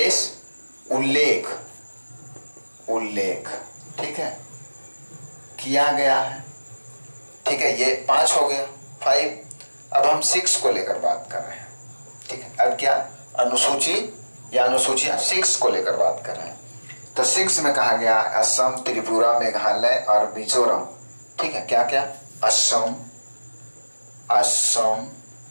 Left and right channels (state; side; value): inverted; both; correlation -1.00